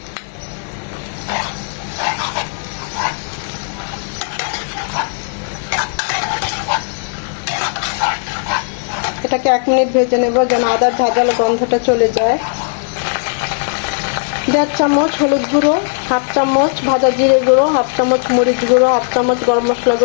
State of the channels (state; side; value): silent; right; digital silence